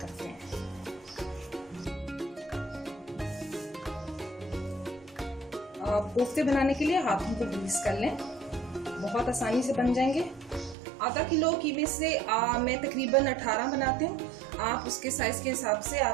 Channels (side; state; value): left; drops out; at 10.8 s